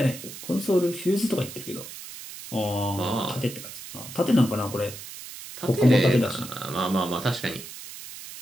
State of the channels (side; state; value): right; noise; hiss, 12 dB below the sound